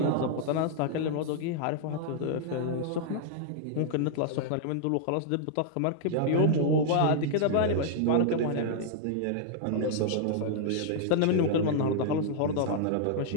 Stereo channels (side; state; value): both; different; correlation -0.01